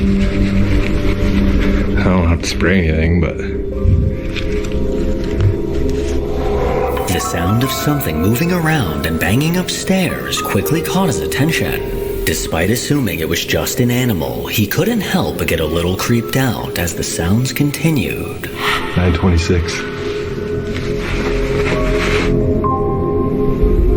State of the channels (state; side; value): identical; both; correlation 1.00